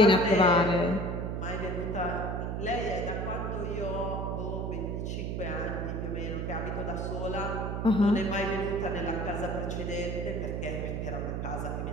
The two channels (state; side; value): noise; right; hum, 2 dB below the sound